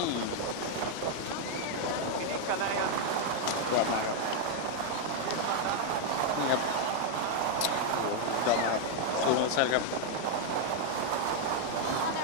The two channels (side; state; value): both; different; correlation 0.00